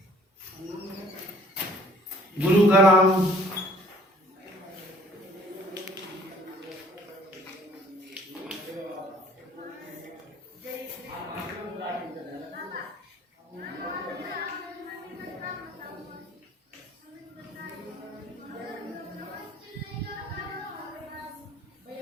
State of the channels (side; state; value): both; normal; correlation 0.56